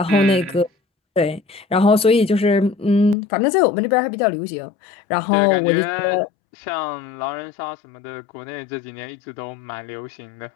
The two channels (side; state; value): right; drops out; at 3.2 s